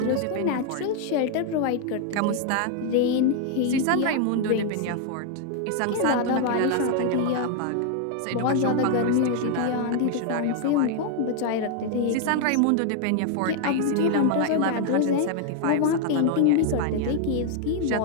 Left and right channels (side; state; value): both; different; correlation 0.00